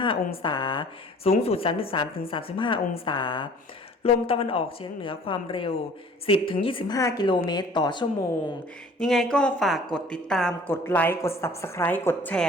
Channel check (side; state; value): both; normal; correlation 0.50